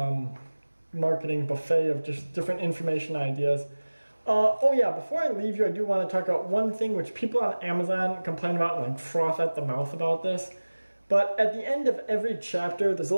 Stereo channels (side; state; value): both; inverted; correlation -1.00